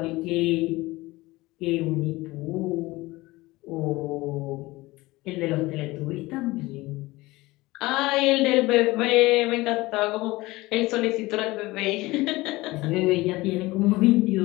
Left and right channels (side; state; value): right; quieter; 20.3 dB